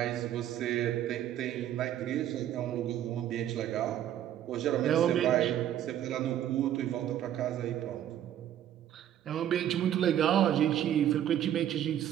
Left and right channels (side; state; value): left; quieter; 11.3 dB